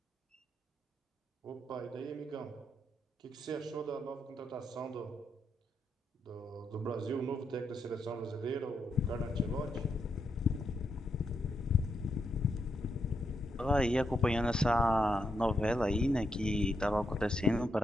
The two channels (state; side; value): normal; both; correlation 0.81